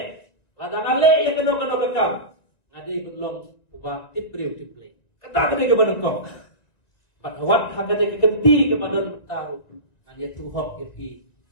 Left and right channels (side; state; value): right; late; 1.9 ms